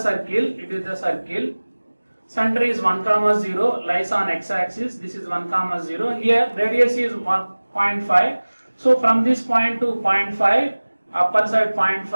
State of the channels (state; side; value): inverted; both; correlation -1.00